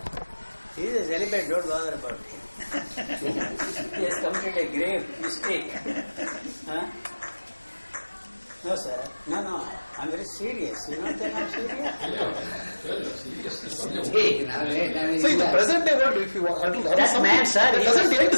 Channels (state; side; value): inverted; both; correlation -1.00